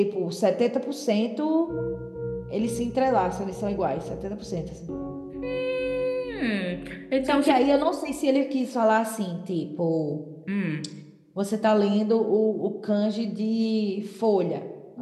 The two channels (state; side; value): identical; both; correlation 1.00